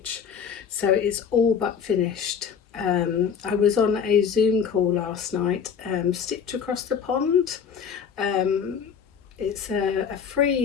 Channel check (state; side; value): quieter; right; 7.0 dB